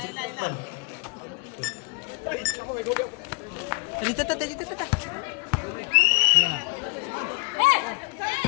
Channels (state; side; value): quieter; right; 30.3 dB